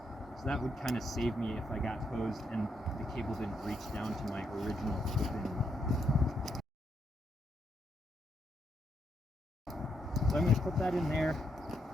So that would kind of save me if I got hosed and the cable didn't reach down to my original clip-in knot. So I'm going to put that in there,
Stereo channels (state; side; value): normal; both; correlation 0.78